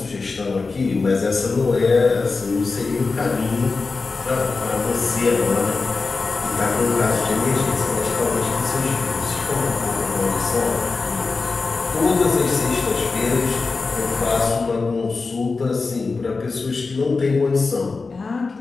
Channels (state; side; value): quieter; right; 4.2 dB